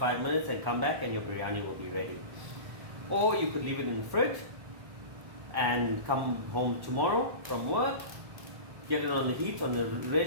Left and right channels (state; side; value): late; left; 1.1 ms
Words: minutes and come back and your biryani will be ready. Or you could leave it in the fridge and come home tomorrow from work, get it on the heat, on a